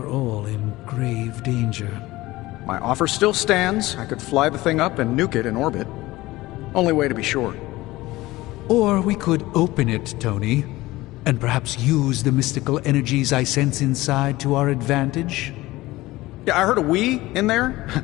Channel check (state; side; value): quieter; right; 18.7 dB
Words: all in grave danger. My offer still stands. I could fly the thing up and nuke it in orbit. Only way to be sure. Or we could open it, Tony, and perhaps use the mystical energies I sense inside to our advantage. Yeah, I heard a "we" in there.